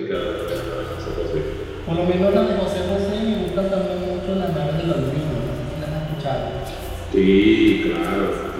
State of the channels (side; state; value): both; identical; correlation 1.00